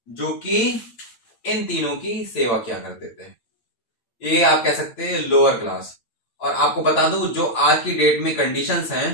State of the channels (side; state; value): right; late; 8.8 ms